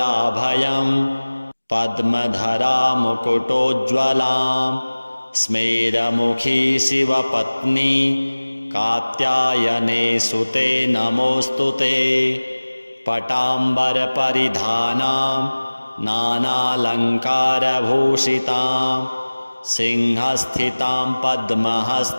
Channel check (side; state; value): both; inverted; correlation -1.00